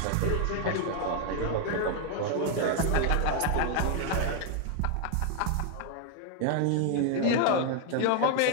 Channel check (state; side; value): different; both; correlation 0.00